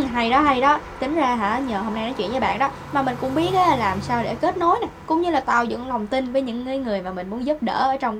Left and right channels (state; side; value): identical; both; correlation 1.00